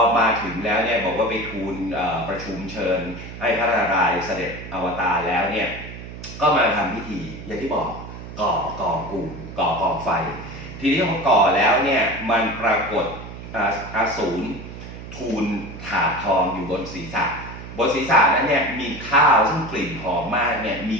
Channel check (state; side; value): noise; right; hum, 12 dB below the sound